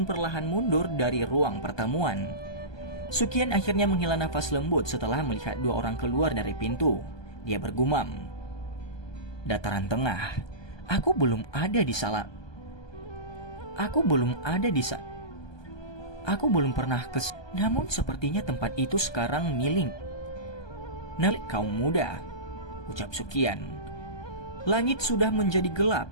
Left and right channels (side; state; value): right; late; 1.2 ms